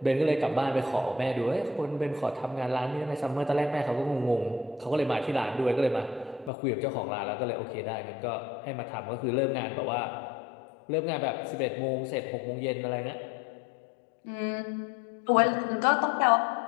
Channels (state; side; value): drops out; right; at 6.5 s